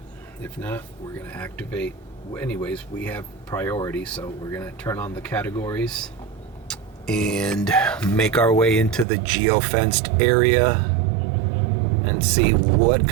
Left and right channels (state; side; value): drops out; left; at 9.1 s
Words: If not, we're gonna activate. Anyways, we have priority, so we're gonna turn on the categories and make our way into the geo-fenced area and see what